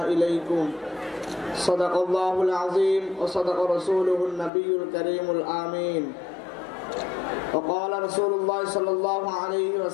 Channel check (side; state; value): right; drops out; at 4.5 s